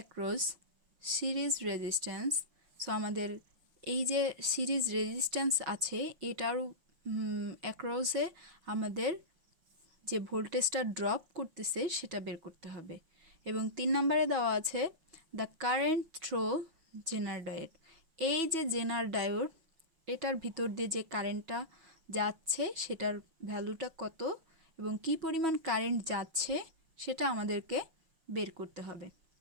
series resistance, so আমাদের এই যে সিরিজ রেজিস্ট্যান্স আছে এটার অ্যাক্রসে আমাদের যে ভোল্টেজটা ড্রপ করতেছে সেটা বের করতে হবে। এবং 3 নম্বরে দেওয়া আছে the current through zener diode, এই যে জেনার ডায়োড এটার ভিতর দিয়ে যে কারেন্টটা যাচ্ছে সেটার ভ্যালুটা কত এবং কি পরিমাণ কারেন্ট যাচ্ছে সেটা আমাদেরকে বের করতে হবে।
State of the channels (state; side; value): late; left; 6.2 ms